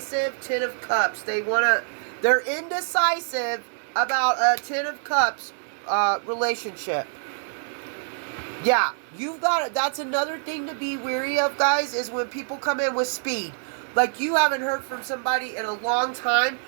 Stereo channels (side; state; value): left; silent; 61 dB below the other